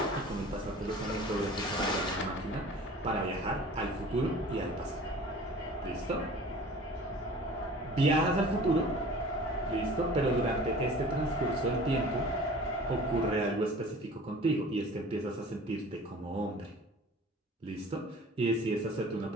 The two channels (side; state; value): both; normal; correlation 0.44